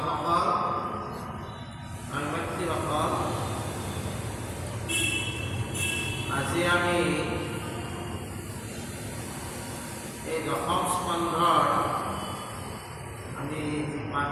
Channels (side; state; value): both; identical; correlation 1.00